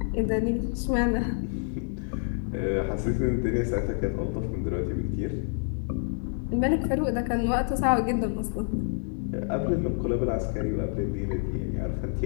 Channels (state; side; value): silent; right; 59 dB below the other